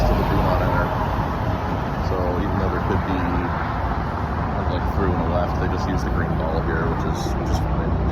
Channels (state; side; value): identical; both; correlation 1.00